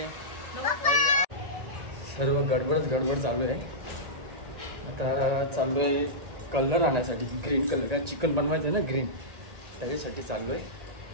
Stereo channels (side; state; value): left; late; 1.9 ms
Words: सर्व गडबड चालू आहे. आता चाललो आहे कलर आणण्यासाठी, ग्रीन कलर. काय चिकन बनवायचं आहे ना ग्रीन, त्याच्यासाठी चाललो आहे.